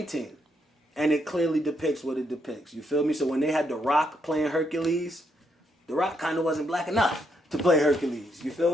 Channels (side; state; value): both; normal; correlation 0.76